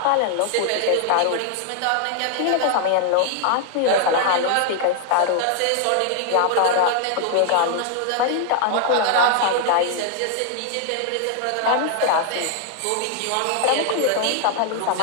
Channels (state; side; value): different; both; correlation 0.00